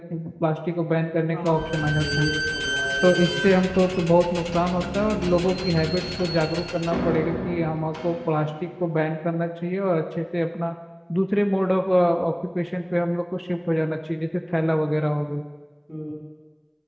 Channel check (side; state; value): both; identical; correlation 1.00